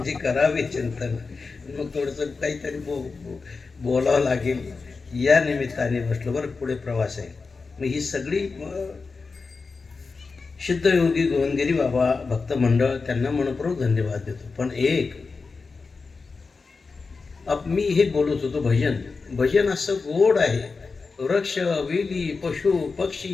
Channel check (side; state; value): right; quieter; 4.4 dB